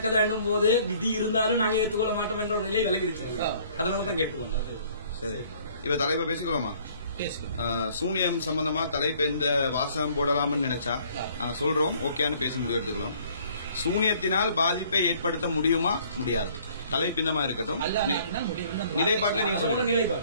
போது விதி இருந்தாலும் நாங்க ஏற்றுக்கொள்ள மாட்டோம் என்ற ஒரு நிலை விலகிருச்சு. அதனாலதான் கேட்டுக்கோங்க. சரி, இப்ப தலைப்பை பேசிக்கலாமா? சூனியம் சம்பந்தமா தலைப்பு எந்த வாசகம் போடலாம்னு நினைச்சா சொல்றோம், ஓகேன்னு பேசி முடிவு எடுத்துக்கலாம். சூனியத்தினால் பாதிப்பை ஏற்படுத்த முடியுமா முடியாது? தலைப்பு இந்த மாதிரி இருக்கட்டும். அல்லாஹ் நாடினால் முடியும். நிலைப்பாட்டுல நீங்க சொல்லுங்க.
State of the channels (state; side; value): inverted; both; correlation -0.58